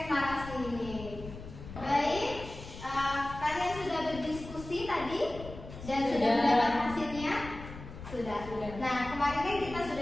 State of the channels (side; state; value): left; noise; rumble, 13 dB below the sound